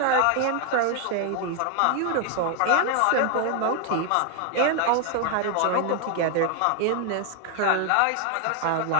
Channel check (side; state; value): both; different; correlation 0.00